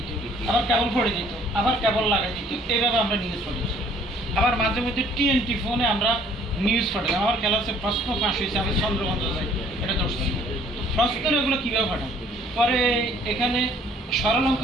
আবার কেবল পড়ে দিত, আবার কেবল লাগাই দিত, এইভাবে আমরা নিউজ পড়েছি। আবার মাঝে মধ্যে টিএনটি ফোনে আমরা নিউজ পাঠাতাম। আমার ক্লাসে প্রশ্ন ফাঁস হয়েছে, আমি চন্দ্রগঞ্জ যাই, এটা ধরছি। তো প্রশ্নের এগুলো কীভাবে পাঠান, পরে এখানে সরল অঙ্ক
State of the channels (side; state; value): both; normal; correlation 0.58